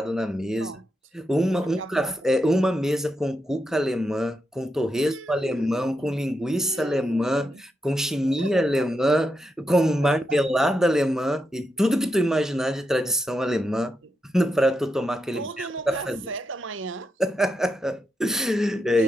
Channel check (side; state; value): both; normal; correlation 0.85